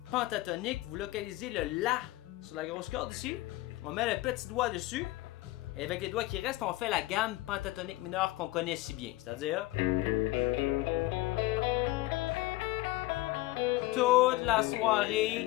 pentatonique, vous localisez le La sur la grosse corde ici. On met le petit doigt dessus. Et avec les doigts qui restent, on fait la gamme pentatonique mineure qu'on connaît si bien. C'est-à-dire... toute la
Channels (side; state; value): right; quieter; 18.6 dB